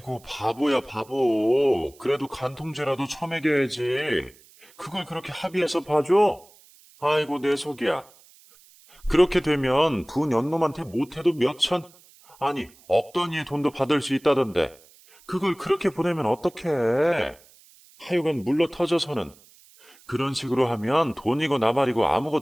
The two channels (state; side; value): noise; right; hiss, 27 dB below the sound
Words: 바보야 바보. 그래도 간통죄라도 처먹여야지. 그걸 그렇게 합의해서 봐줘? 아이고 내 속이야. 그렇게 되면 부 연놈한테 못해도 몇천, 아니 억 단위의 돈도 받을 수 있다던데 그걸 그렇게 보내면 어떡해. 하여간 물러 터져서는 그런 식으로 하면 돈이고 나발이고